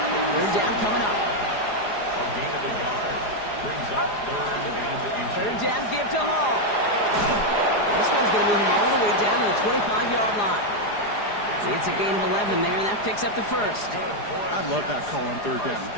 Third down coming up. A gain of a yard brings up 3rd and inches. Third down give to Hall. This one's going to move him all the way down to the 25-yard line. It's a gain of 11 there, and that picks up the first. I love that call on third down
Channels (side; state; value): right; late; 4.9 ms